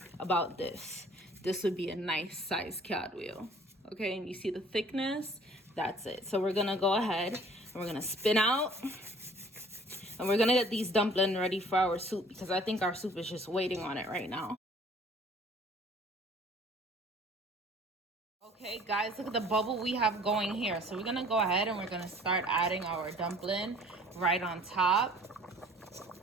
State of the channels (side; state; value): both; normal; correlation 0.52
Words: about this would be a nice size cartwheel. Okay, and you see the thickness? That's it. So we're gonna go ahead We're gonna spin out. And we're gonna get these dumplings ready for our soup because I think our soup is just waiting on it right now. Okay, guys, look at the bubble we have going here. So we're gonna go ahead and we're gonna start adding our dumpling right on top.